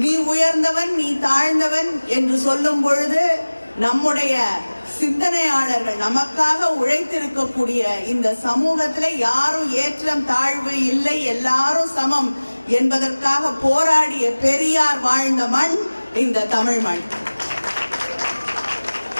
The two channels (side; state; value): both; inverted; correlation -1.00